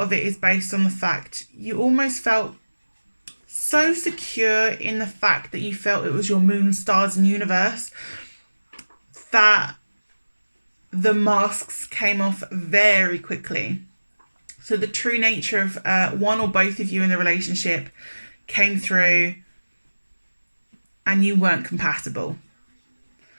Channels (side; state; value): both; inverted; correlation -1.00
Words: of it is based on the fact you almost felt so secure in the fact that you felt it was your moon, stars, and universe that the masks came off very quickly. So the true nature of one or both of you in the relationship came through and you weren't compatible.